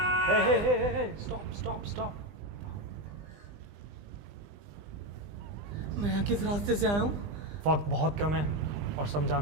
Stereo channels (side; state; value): left; late; 20 ms